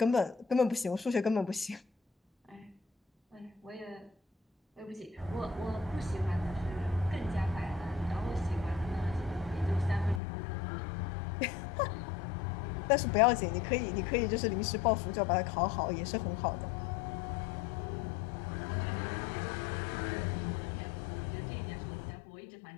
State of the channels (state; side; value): drops out; right; at 10.2 s